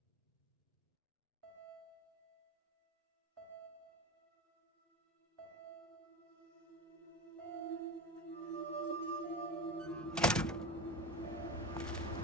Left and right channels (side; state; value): both; normal; correlation 0.26